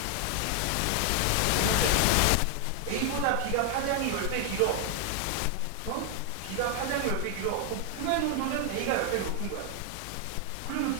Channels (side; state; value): both; different; correlation 0.00